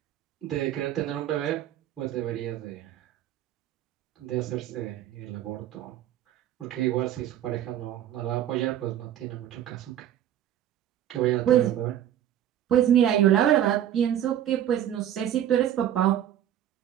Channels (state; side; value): quieter; left; 11.2 dB